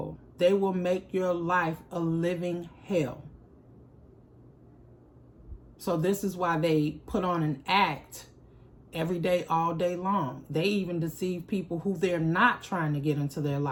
They will make your life a living hell. So this is why they put on an act every day, all day long. They even deceive people who they're not trying to get into their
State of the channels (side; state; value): both; identical; correlation 1.00